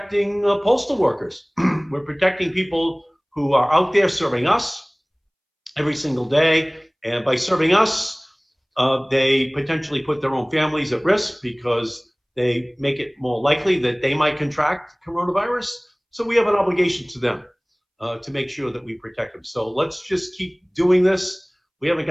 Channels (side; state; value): both; identical; correlation 1.00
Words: postal workers. We're protecting people who are out there serving us every single day. And by serving us, they potentially put their own families at risk because they make it more likely that they might contract coronavirus. So we have an obligation to them to make sure that we protect them. So let's just keep doing this. We haven't